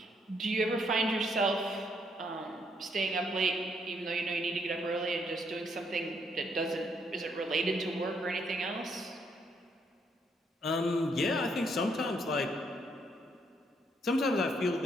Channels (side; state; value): both; normal; correlation 0.72